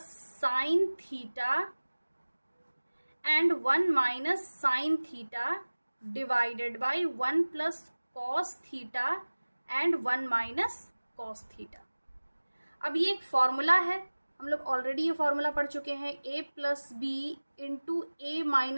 sine theta and 1 minus sine theta divided by 1 plus cos theta and 1 minus cos theta. अब ये एक फॉर्मूला है, हम लोग ऑलरेडी ये फॉर्मूला पढ़ चुके हैं, a plus b into a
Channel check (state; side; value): inverted; both; correlation -1.00